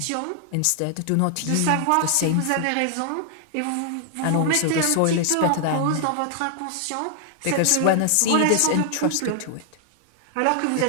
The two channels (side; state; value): both; different; correlation 0.00